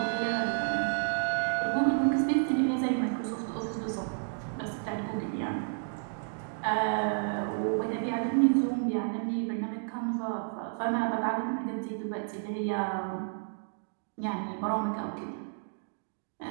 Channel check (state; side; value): silent; left; digital silence